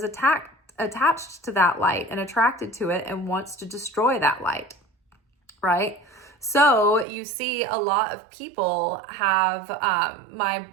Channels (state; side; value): drops out; left; at 7.1 s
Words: attached to that light and attracted to it and wants to destroy that light. Right? So you see a lot of people have,